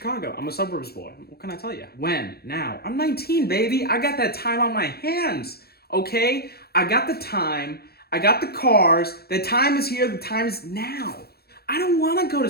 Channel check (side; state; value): right; late; 0.46 ms